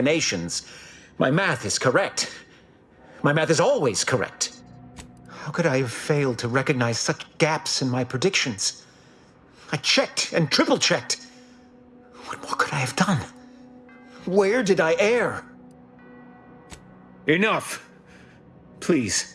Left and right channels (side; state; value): both; identical; correlation 1.00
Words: My math is correct. My math is always correct. How could I have failed to recognize such gaps in my predictions? I checked and triple-checked. What more could I have done? Where did I err? Enough!